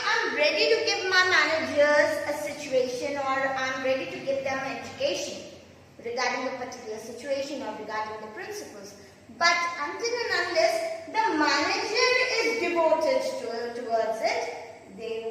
am ready to give my managers a situation, or I am ready to give them education regarding the particular situation or regarding the principles. But until and unless the manager is devoted towards it,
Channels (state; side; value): identical; both; correlation 1.00